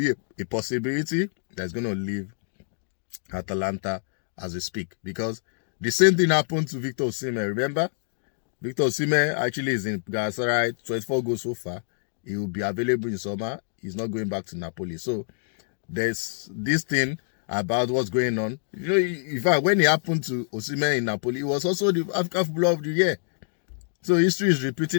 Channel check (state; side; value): silent; right; digital silence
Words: a possibility that's going to leave Atalanta as we speak. Because the same thing happened to Victor Osimhen. Remember? Victor Osimhen actually is in Galatasaray, 24 goals so far. He will be available in summer. He's not going back to Napoli. So there's this thing about what's going on. In fact, when it happened to Osimhen in Napoli, it was also the African Footballer of the Year. So history is